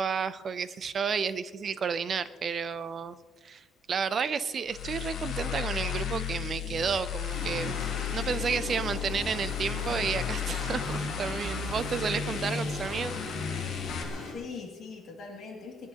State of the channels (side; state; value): both; normal; correlation 0.66